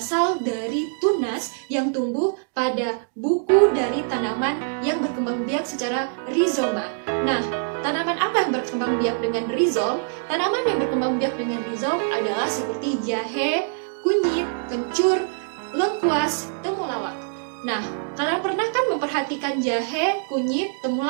dari tunas yang tumbuh pada buku dari tanaman yang berkembang biak secara rhizoma. Nah, tanaman apa yang berkembang biak dengan rhizom? Tanaman yang berkembang biak dengan rhizom adalah seperti jahe, kunyit, kencur, lengkuas, temulawak. Nah, kalian pernah kan memperhatikan jahe, kunyit,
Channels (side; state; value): left; silent; digital silence